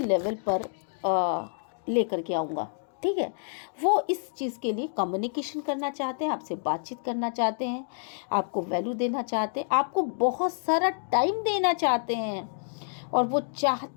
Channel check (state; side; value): silent; right; digital silence